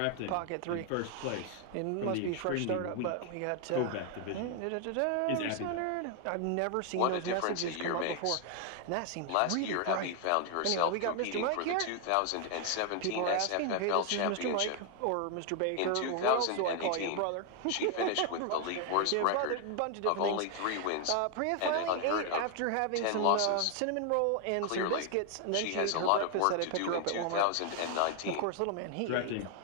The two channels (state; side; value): different; both; correlation 0.00